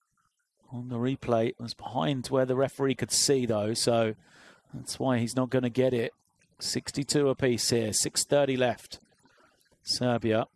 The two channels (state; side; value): identical; both; correlation 1.00